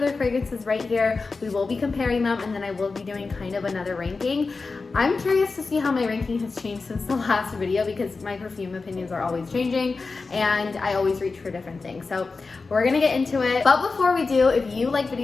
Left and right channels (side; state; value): right; quieter; 4.1 dB